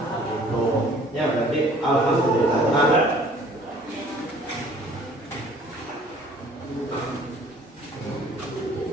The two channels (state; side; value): normal; both; correlation 0.54